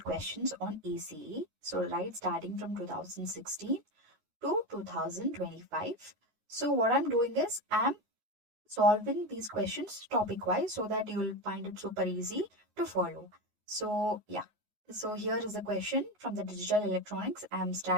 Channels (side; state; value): left; late; 9.4 ms